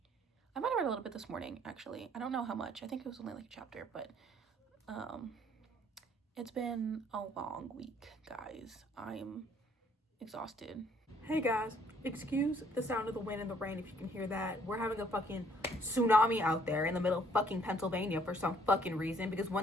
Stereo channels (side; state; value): both; normal; correlation 0.63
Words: I might have read a little bit this morning, actually. I don't know how much. I think it was only like a chapter, but It's been a long week, guys. I'm exhausted. Hey guys, excuse the sound of the wind and the rain if you can hear that. We're having a fucking tsunami out there in the middle of fucking Pennsylvania for some fucking reason, because